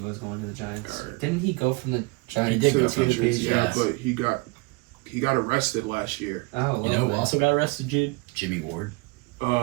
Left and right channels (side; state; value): left; quieter; 25.9 dB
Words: was going to the Giants? Right. Didn't he go from the Giants He did to go the from the Patriots? yeah, but he got arrested last year. Oh, You know who also got arrested, Jude? Jimmy Ward. A